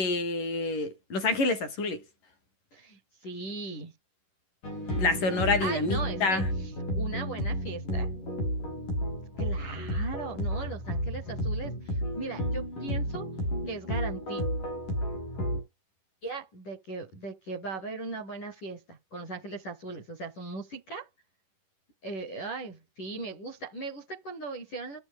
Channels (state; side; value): late; right; 11 ms